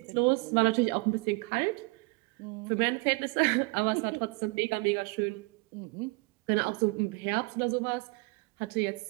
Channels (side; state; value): left; quieter; 28.1 dB